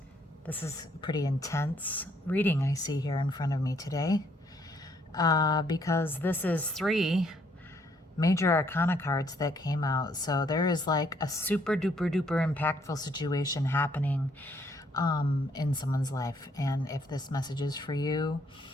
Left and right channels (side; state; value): both; normal; correlation 0.68